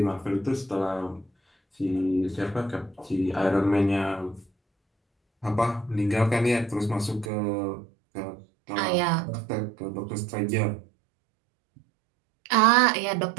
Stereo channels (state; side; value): drops out; left; at 7.3 s